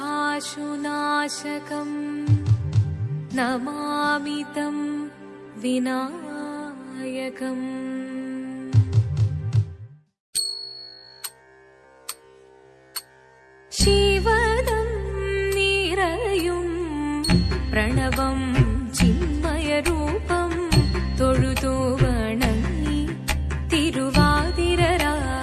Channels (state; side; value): identical; both; correlation 1.00